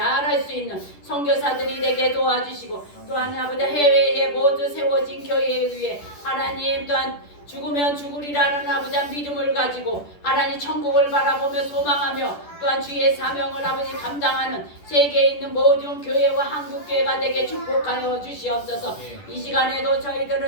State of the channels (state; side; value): late; right; 10 ms